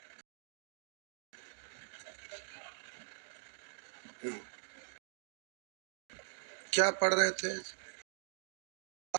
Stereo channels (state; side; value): silent; left; digital silence